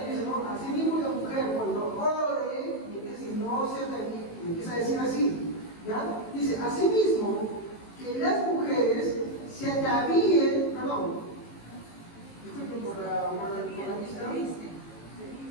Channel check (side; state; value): right; late; 18 ms